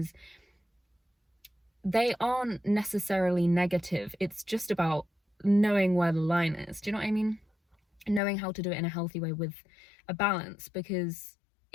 they aren't necessarily negative. It's just about knowing where the line is. Do you know what I mean? Knowing how to do it in a healthy way with a balance, because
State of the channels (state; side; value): drops out; right; at 8.2 s